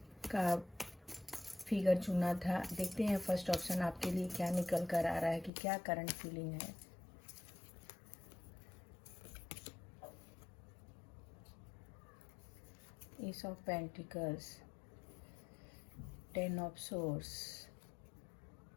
का फिगर चुना था, देखते हैं फर्स्ट ऑप्शन आपके लिए क्या निकल कर आ रहा है कि क्या करंट फीलिंग है। S of pentacles, 10 of source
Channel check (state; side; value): drops out; right; at 5.5 s